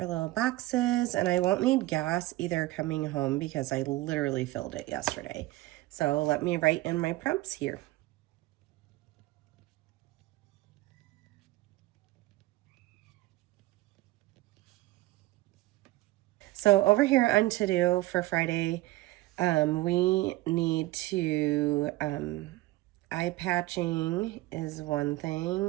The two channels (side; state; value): left; quieter; 18.5 dB